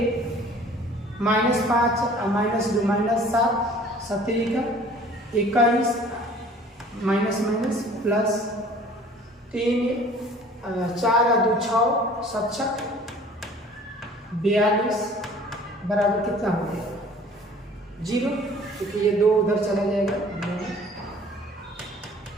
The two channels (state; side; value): normal; both; correlation 0.50